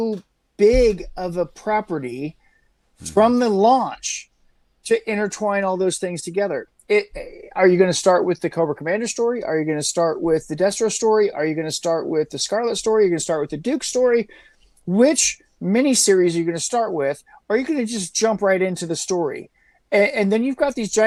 big of a property from the launch to intertwine all those things together. Are you going to start with the Cobra Commander story? Are you going to start with the Destro story? Are you going to start with the Scarlet story? Are you going to start with the Duke story? Which miniseries are you going to start with? Or are you going to just jump right into the story? And then you've got these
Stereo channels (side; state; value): both; identical; correlation 1.00